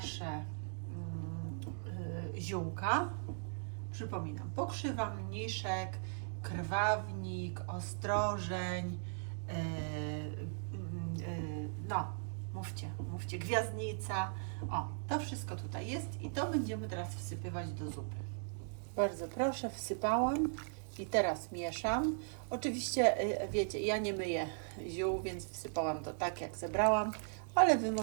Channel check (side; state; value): left; silent; digital silence